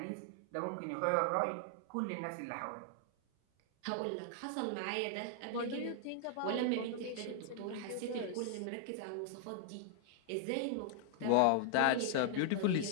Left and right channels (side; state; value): both; different; correlation 0.00